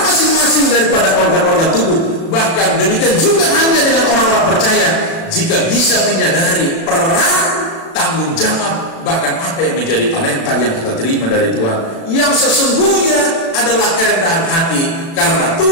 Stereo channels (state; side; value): late; right; 36 ms